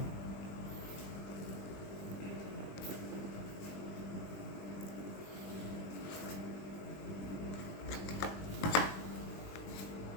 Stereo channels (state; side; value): late; right; 20 ms